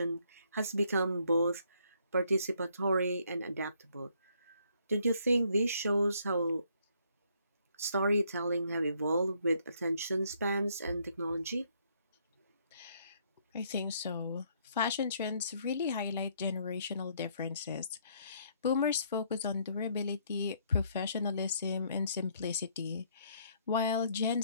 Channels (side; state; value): both; inverted; correlation -0.68